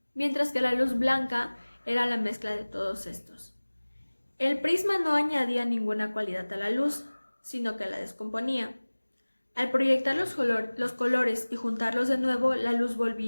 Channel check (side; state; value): both; inverted; correlation -1.00